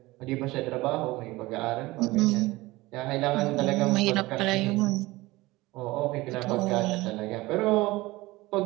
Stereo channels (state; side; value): quieter; left; 20.1 dB